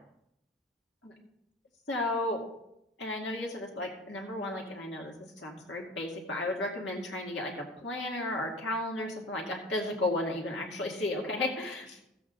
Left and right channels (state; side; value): normal; both; correlation 0.37